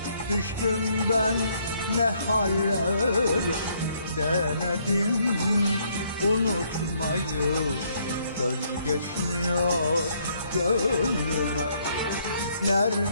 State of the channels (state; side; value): inverted; both; correlation -0.69